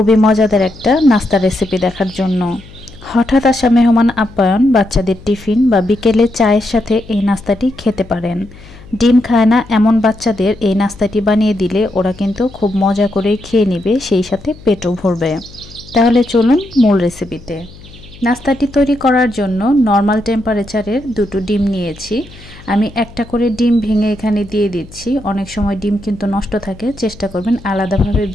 মজাদার একটা নাস্তা রেসিপি দেখার জন্য। হঠাৎ আসা মেহমান আপ্যায়ন, বাচ্চাদের টিফিন বা বিকেলে চায়ের সাথে এই নাস্তাটি খেতে পারেন। ডিম খায় না এমন বাচ্চাদের এই নাস্তাটি বানিয়ে দিলে ওরা কিন্তু খুব মজা করে খেয়ে নেবে, সেই সাথে পেটও ভরবে। তাহলে চলুন মূল রেসিপিতে। নাস্তাটি তৈরি করার জন্য নর্মাল টেম্পারেচারের দুটো ডিম নিয়েছি। আমি একটা করে ডিম ভেঙে এখানে দিয়ে দিচ্ছি। অনেক সময় ডিম কিন্তু নষ্ট থাকে, চেষ্টা করবেন আলাদাভাবে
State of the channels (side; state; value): left; noise; hum, 20 dB below the sound